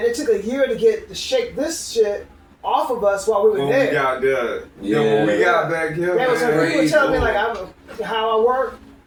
It took a year to shake this shit off of us while we were When there. we got there. Yeah. When we got back here, They was man. people were telling me like how I work.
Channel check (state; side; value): identical; both; correlation 1.00